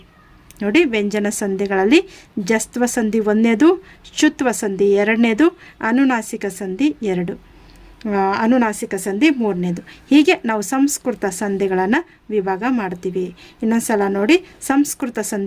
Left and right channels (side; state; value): both; identical; correlation 1.00